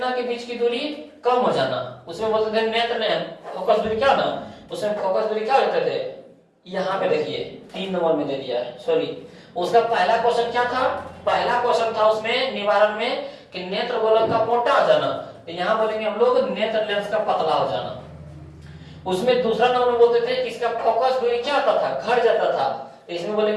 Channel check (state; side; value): identical; both; correlation 1.00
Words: के बीच की दूरी कम हो जाना, उसमें बोलते थे नेत्र लेंस फोकस दूरी क्या ना, उसमें फोकस दूरी क्या होते थे, यहाँ पे देखिए 3 नंबर में दे दिया है, सॉरी उसका पहला क्वेश्चन क्या था, पहला क्वेश्चन था उसमें निवारण में कि नेत्र गोलक का मोटा हो जाना, तो यहाँ बोलेंगे हम लोग नेत्र लेंस का पतला हो जाना। उसमें दूसरा नंबर में बोलते थे कि इसका फोकस दूरी क्या होता था, घट जाता था, इसमें